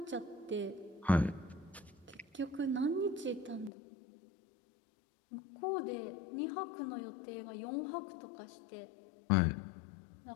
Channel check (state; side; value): drops out; right; at 3.7 s